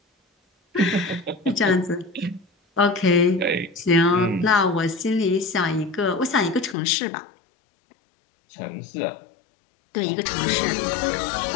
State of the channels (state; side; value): drops out; right; at 6.8 s